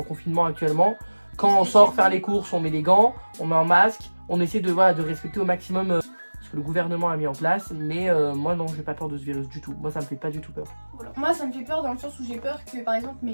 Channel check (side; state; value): both; inverted; correlation -1.00